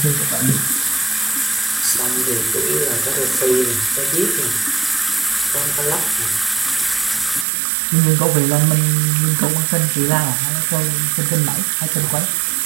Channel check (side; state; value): left; drops out; at 7.5 s